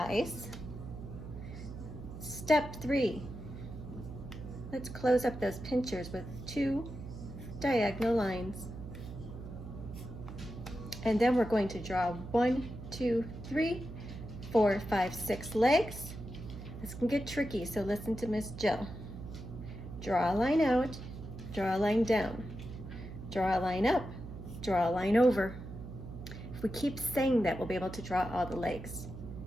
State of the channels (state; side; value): noise; right; hum, 11 dB below the sound